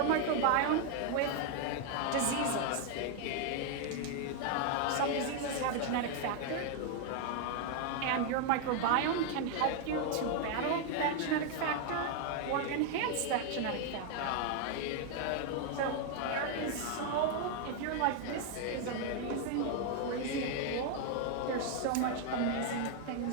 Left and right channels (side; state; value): both; different; correlation 0.00